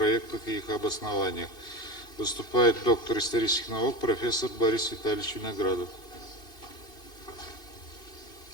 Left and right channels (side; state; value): right; late; 2.7 ms